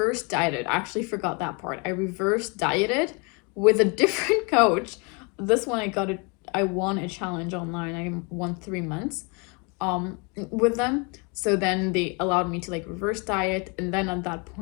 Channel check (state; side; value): quieter; right; 32.3 dB